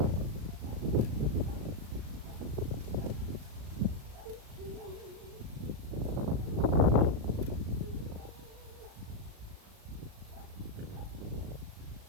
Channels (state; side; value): late; left; 37 ms